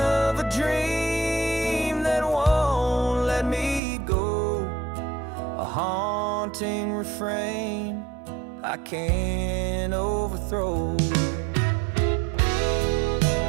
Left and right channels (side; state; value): left; drops out; at 3.8 s